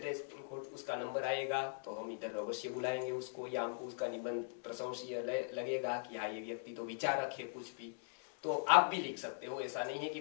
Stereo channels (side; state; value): right; silent; digital silence